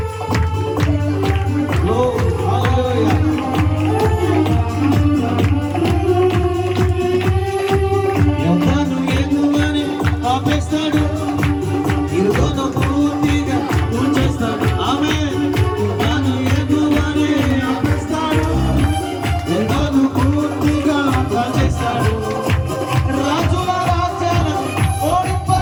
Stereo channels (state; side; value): identical; both; correlation 1.00